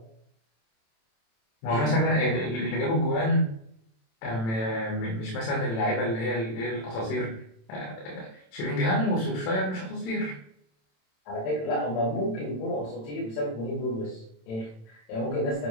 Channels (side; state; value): right; late; 27 ms